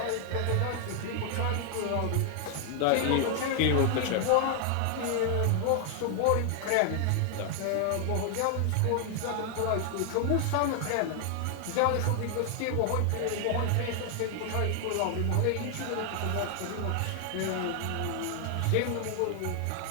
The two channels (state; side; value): different; both; correlation 0.00